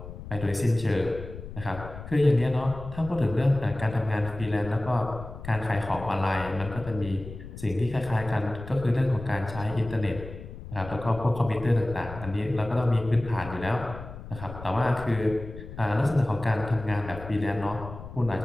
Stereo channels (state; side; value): noise; left; rumble, 12 dB below the sound